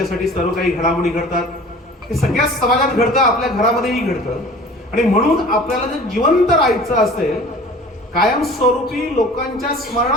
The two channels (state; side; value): normal; both; correlation 0.45